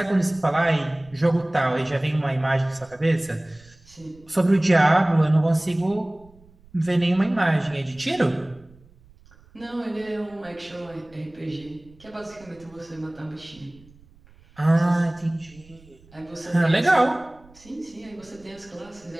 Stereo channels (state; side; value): noise; right; rumble, 27 dB below the sound